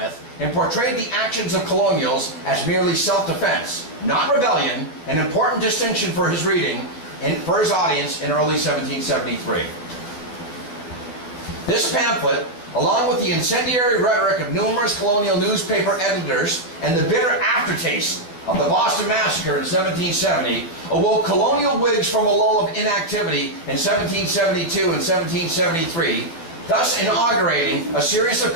and portrayed the actions of colonials as merely self-defense, not rebellion, an important distinction for his reading and for his audience in early 1773. This pamphlet, along with the incendiary rhetoric of numerous colonial newspaper editors and the bitter aftertaste of the Boston Massacre in 1770, awoke colonial Whigs from a lull of inactivity in 1772 and 1773, thus inaugurating a series of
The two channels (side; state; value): right; late; 12 ms